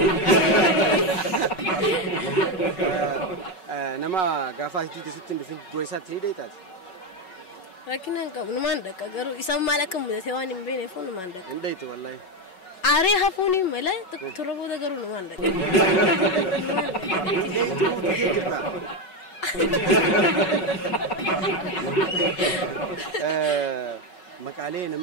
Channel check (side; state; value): right; late; 5.4 ms